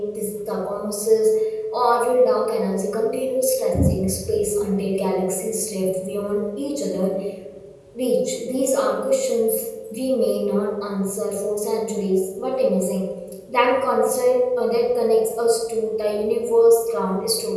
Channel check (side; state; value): both; identical; correlation 1.00